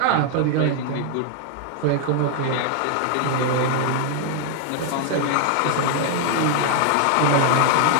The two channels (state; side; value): different; both; correlation 0.00